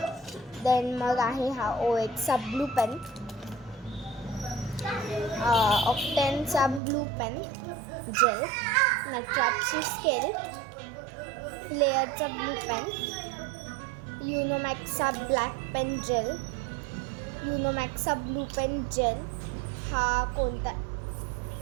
देन मग आहे हा OXचा ब्लू पेन, ऑक्टेनचा ब्लू पेन जेल, नटराजची स्केल, फ्लेअरचा ब्लू पेन, युनोमॅक्सचा ब्लॅक पेन जेल, युनोमॅक्सचा ब्लू पेन जेल, हा कोणता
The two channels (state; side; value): drops out; left; at 6.8 s